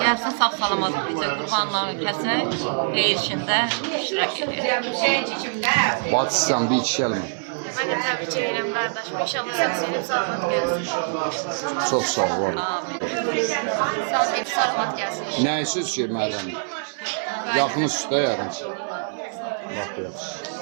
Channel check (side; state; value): left; silent; 60 dB below the other